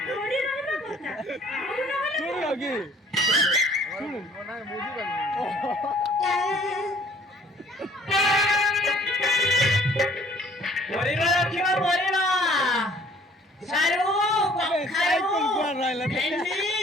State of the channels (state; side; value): normal; both; correlation 0.56